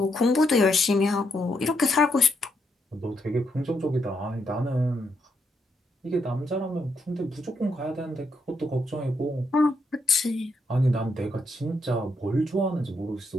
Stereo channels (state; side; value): normal; both; correlation 0.78